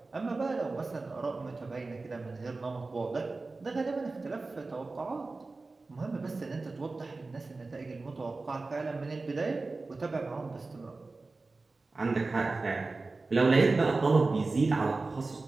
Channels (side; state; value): left; quieter; 3.6 dB